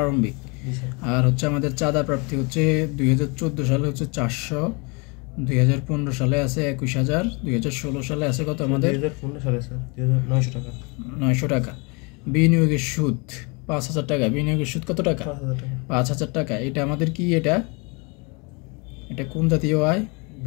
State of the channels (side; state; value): right; quieter; 30.5 dB